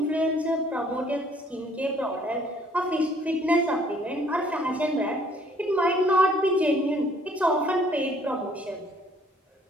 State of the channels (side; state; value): both; normal; correlation 0.60